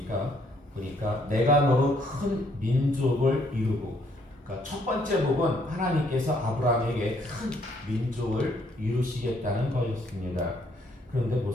내가 너로 큰 민족을 이루고, 그러니까 첫 번째 복은 하나님께서 아브라함에게 큰 민족을 이루시겠다는 것이었습니다. 그런데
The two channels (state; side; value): normal; both; correlation 0.68